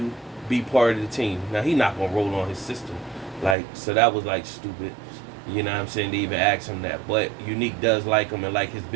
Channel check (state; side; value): drops out; left; at 3.6 s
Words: be part of the team. Now, he not gonna roll on his sister. So that was, stupid. You know what I'm saying? To even ask him that. But Unique does like him and like his